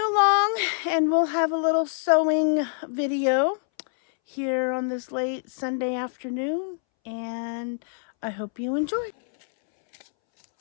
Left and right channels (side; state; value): right; silent; 62 dB below the other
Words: along and we'll have a little sowing video here on this late Sunday afternoon, and I hope you enjoy.